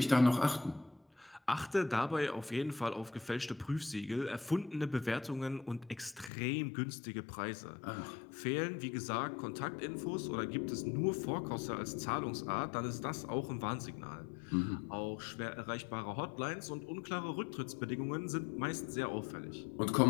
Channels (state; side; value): drops out; right; at 6.3 s